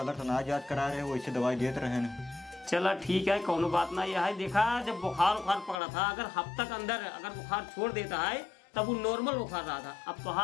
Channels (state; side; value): drops out; right; at 5.8 s